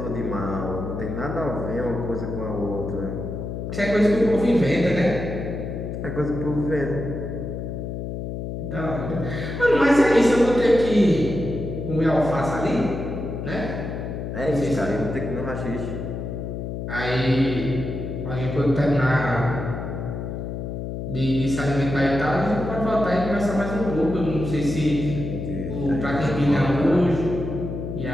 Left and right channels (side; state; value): left; noise; hum, 5 dB below the sound